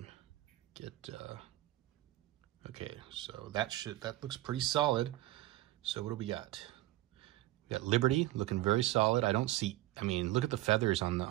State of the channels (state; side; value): quieter; left; 16.8 dB